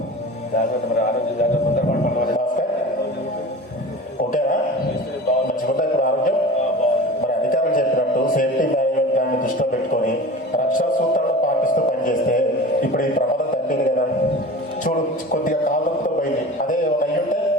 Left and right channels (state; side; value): normal; both; correlation 0.36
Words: జాగ్రత్త, మరి ఆరోగ్యం జాగ్రత్త, తొందరపడి పడవాలి. భాస్కర్ ఓకేనా? మంచిగుందా ఇప్పుడు ఆరోగ్యం? మరి అధికారులు చెప్పినట్టు సేఫ్టీ మేనేజ్మెంట్ దాన్ని దృష్టిలో పెట్టుకొని రక్షణ సూత్రాలను పాటిస్తూ పనిచేస్తే ఇప్పుడు ఈ ప్రమాదం తగ్గింది కదా. చూడు కొద్దిగా కాలంతో పోయింది, అదే ఏమైనా అయ్యుంటే